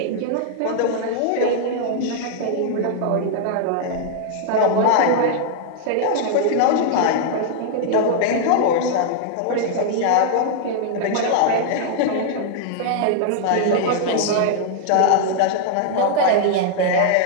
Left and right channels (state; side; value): different; both; correlation -0.01